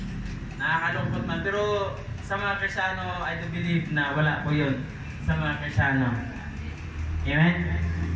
Nakakalungkot man. Pero sa mga Kristiyano, I do believe na wala po yun sa mga Kristiyano. Amen?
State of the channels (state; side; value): identical; both; correlation 1.00